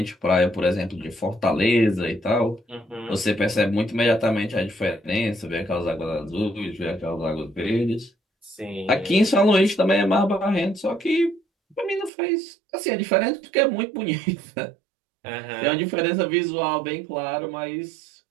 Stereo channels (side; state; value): left; drops out; at 12.1 s